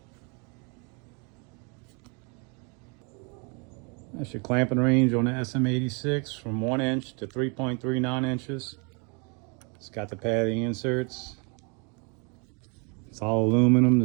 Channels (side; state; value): left; quieter; 33.8 dB